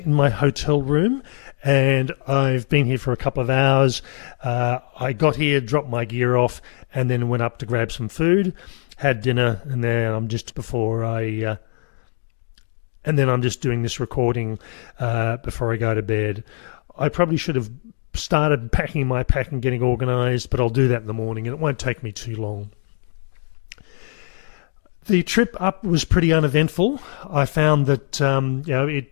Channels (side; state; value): right; silent; 64 dB below the other